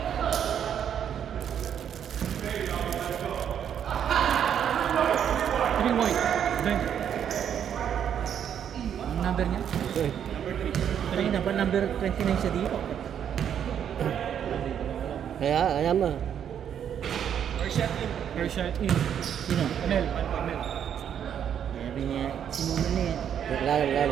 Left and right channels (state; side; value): quieter; left; 8.9 dB